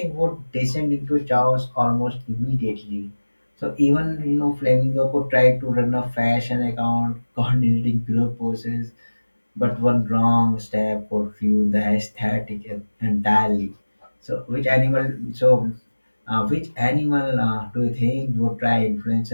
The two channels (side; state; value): both; inverted; correlation -1.00